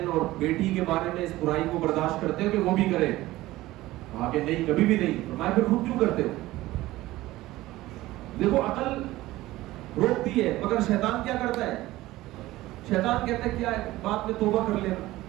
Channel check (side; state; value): left; quieter; 17.2 dB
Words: اور بیٹی کے بارے میں اس برائی کو برداشت کرتے ہو کہ وہ بھی کرے؟ کہا کہ نہیں، کبھی بھی نہیں. فرمایا پھر خود کیوں کرتے ہو؟ دیکھو عقل روکتی ہے، مگر شیطان کیا کرتا ہے؟ شیطان کہتا ہے کیا بات میں توبہ کر لینا.